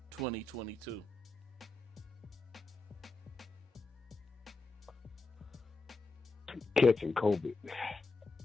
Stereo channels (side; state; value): right; quieter; 3.4 dB